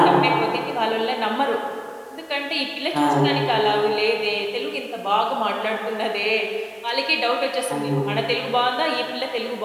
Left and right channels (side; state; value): both; identical; correlation 1.00